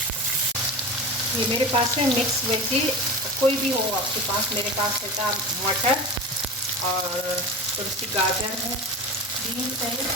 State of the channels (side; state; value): both; normal; correlation 0.29